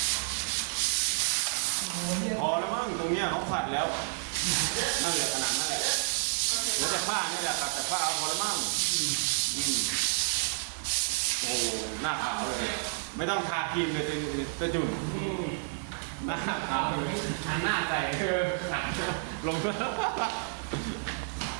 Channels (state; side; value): silent; left; digital silence